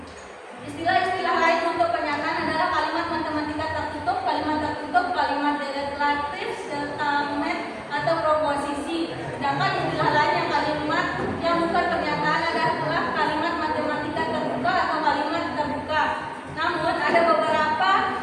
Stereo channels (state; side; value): identical; both; correlation 1.00